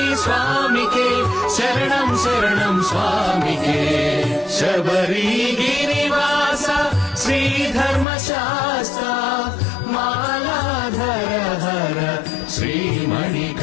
స్వామికే శరణం శరణం స్వామికే శబరిగిరివాస శ్రీధర్మశాస్త్ర మాలాధర హర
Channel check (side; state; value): right; drops out; at 8.1 s